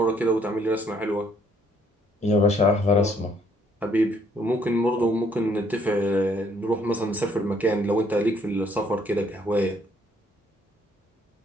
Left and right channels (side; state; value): both; normal; correlation 0.66